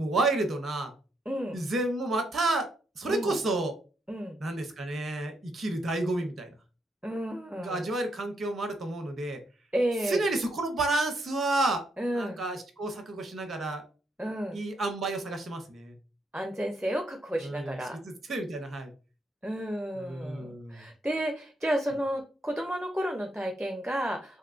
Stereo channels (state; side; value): normal; both; correlation 0.77